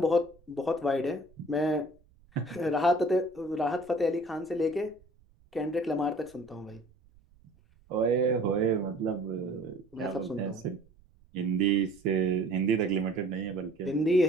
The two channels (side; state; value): right; noise; rumble, 30 dB below the sound